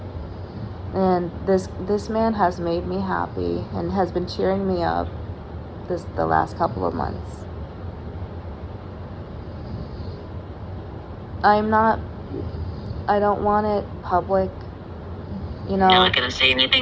And this man has made me happy and has been cheering me up the last couple of months. I don't want it public, you know. I'm not gonna say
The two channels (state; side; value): identical; both; correlation 1.00